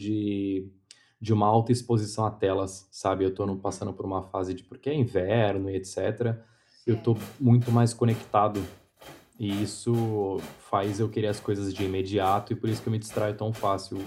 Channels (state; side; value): identical; both; correlation 1.00